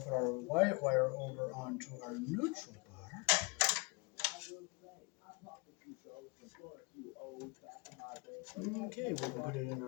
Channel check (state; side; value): quieter; right; 27.9 dB